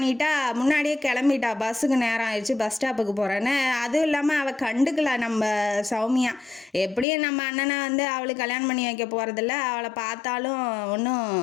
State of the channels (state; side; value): drops out; right; at 7.1 s